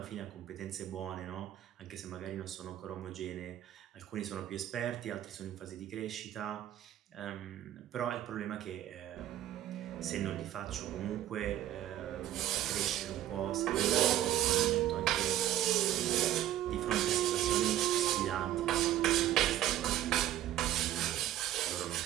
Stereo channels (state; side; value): quieter; left; 12.7 dB